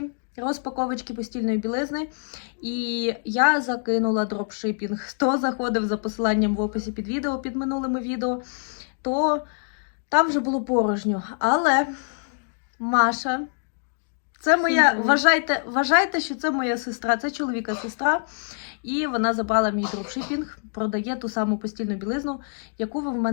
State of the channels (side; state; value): right; silent; 62 dB below the other